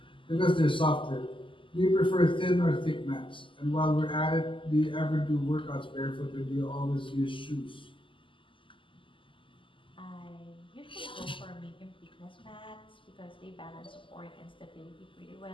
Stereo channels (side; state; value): right; late; 0.25 ms